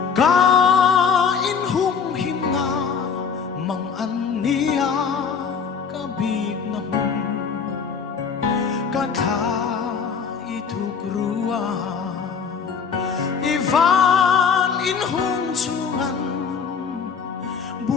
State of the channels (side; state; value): right; quieter; 6.2 dB